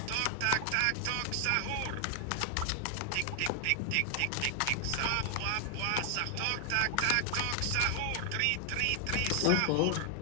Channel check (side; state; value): both; different; correlation 0.00